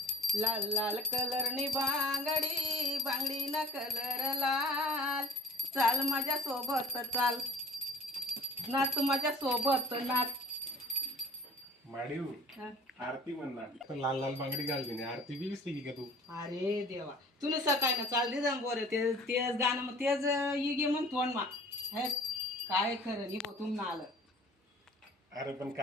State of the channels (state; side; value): normal; both; correlation 0.49